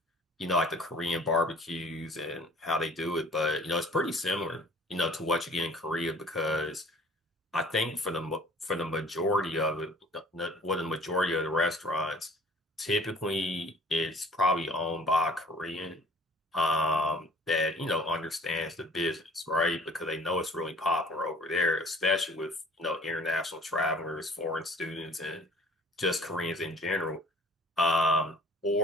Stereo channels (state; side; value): normal; both; correlation 0.51